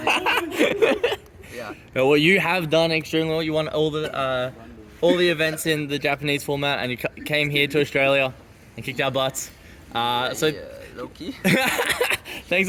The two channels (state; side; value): identical; both; correlation 1.00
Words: Yeah. Well, you have done extremely well. You won all the events in the Japanese format, and you came here to Australia and kicked our butts. So Low key. thanks